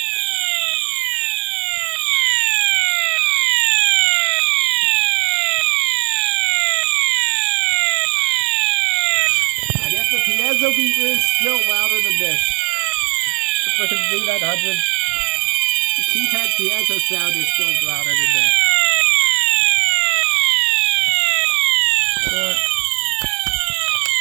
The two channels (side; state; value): left; quieter; 32.9 dB